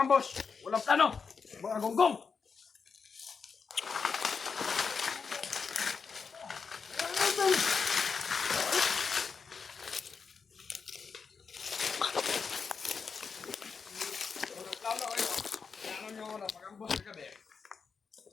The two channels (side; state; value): right; quieter; 5.5 dB